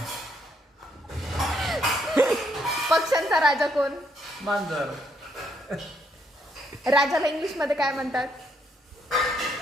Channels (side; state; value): both; normal; correlation 0.73